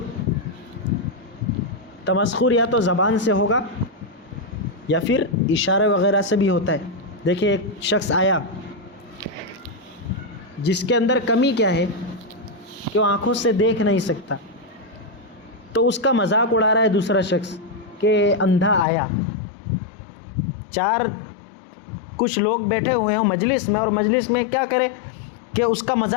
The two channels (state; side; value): drops out; right; at 18.9 s